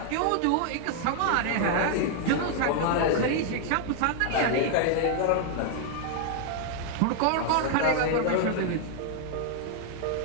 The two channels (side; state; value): both; different; correlation 0.00